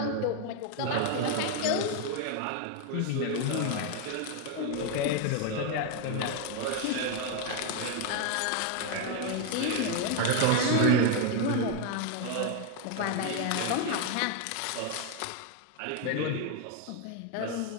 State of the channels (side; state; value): both; different; correlation 0.01